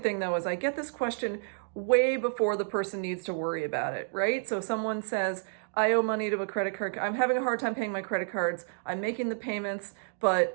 thing though is I get this question way before the person needs to worry about it, right? So someone says, I owe money to a credit card. I'm having a hard time paying my credit cards. I'm making the payments,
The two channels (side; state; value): left; silent; digital silence